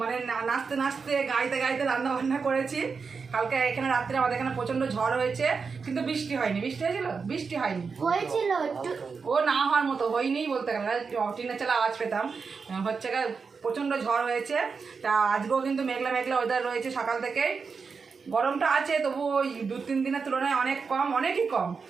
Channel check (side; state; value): left; quieter; 5.2 dB